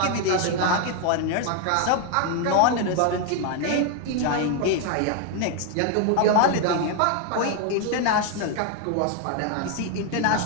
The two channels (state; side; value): different; both; correlation 0.01